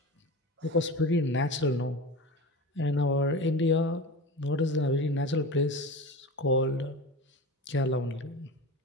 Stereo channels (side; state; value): both; normal; correlation 0.29